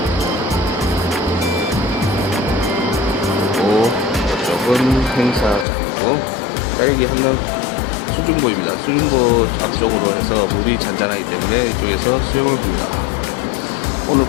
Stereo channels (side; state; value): right; drops out; at 5.7 s